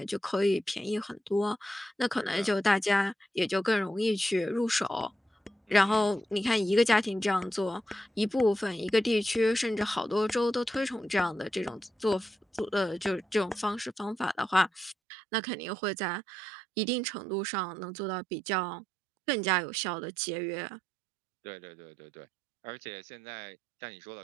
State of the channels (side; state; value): left; drops out; at 15.0 s